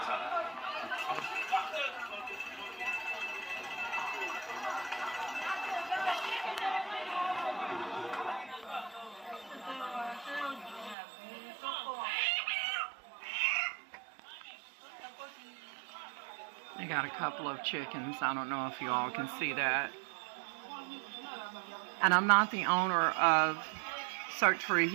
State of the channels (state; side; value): drops out; left; at 11.0 s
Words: time. They got a couple of chickens. I don't know if you all can see that. And I'm not the owner of Search for